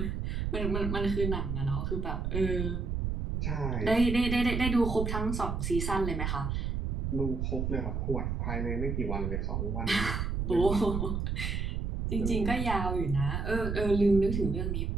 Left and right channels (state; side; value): noise; right; rumble, 1 dB below the sound